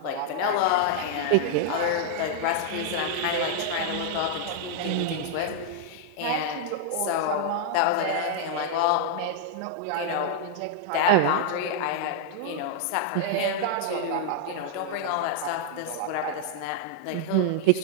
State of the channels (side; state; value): both; different; correlation -0.01